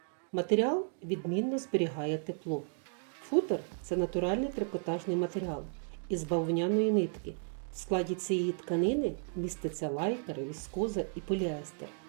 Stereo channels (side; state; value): left; silent; 55 dB below the other